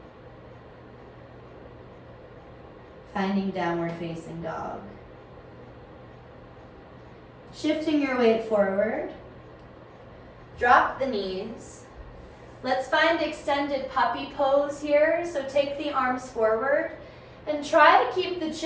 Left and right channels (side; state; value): both; identical; correlation 1.00